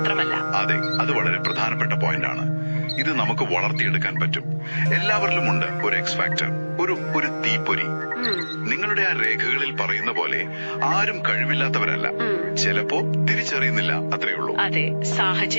അതെ, അത് വളരെ പ്രധാനപ്പെട്ട പോയിന്റ് ആണ്. ഇത് നമുക്ക് വളർത്തിയെടുക്കാൻ പറ്റും. എല്ലാവരിലും ഉണ്ട് ഒരു എക്സ് ഫാക്ടർ, ഒരു തീപ്പൊരി. നിങ്ങളുടെ ആ രേഖകളിൽ പറയുന്ന പോലെ ആരും കഴിവില്ലാത്തവരല്ല. ചിലപ്പോ തിരിച്ചറിയുന്നില്ല, അത്രയുള്ളൂ. അതെ,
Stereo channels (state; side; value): inverted; both; correlation -1.00